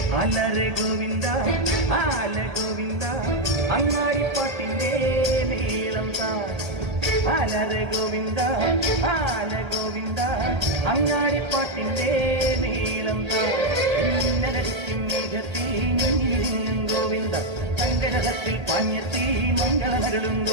ആലരെ ഗോവിന്ദ ആല ഗോവിന്ദ അങ്ങാടിപ്പാട്ടിന്റെ നീളം താ ആലരെ ഗോവിന്ദ ആല ഗോവിന്ദ അങ്ങാടിപ്പാട്ടിന്റെ നീളം താ ഇന്നലടിക്കും മേഘത്തി നിന്നും ഗോവിന്ദ സങ്കരഹത്തിൽ പാഞ്ഞെത്തി മംഗളമരുളും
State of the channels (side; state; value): left; late; 1.8 ms